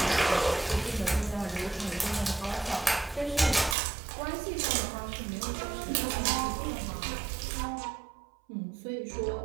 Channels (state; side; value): drops out; left; at 3.8 s